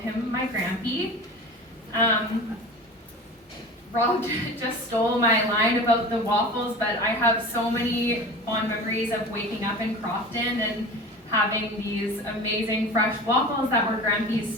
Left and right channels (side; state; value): both; normal; correlation 0.35